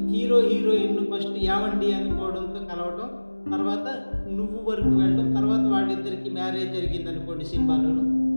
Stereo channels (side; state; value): both; inverted; correlation -1.00